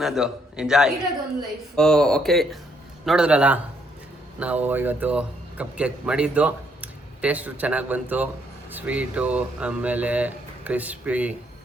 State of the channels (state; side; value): normal; both; correlation 0.71